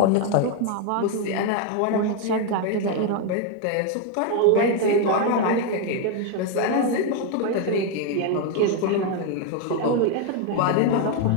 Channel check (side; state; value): both; different; correlation 0.01